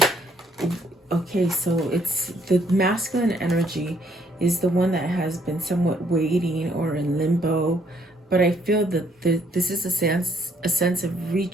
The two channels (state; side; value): normal; both; correlation 0.67